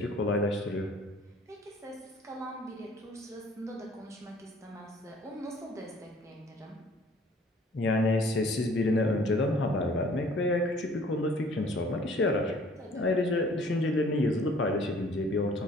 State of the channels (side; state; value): both; normal; correlation 0.54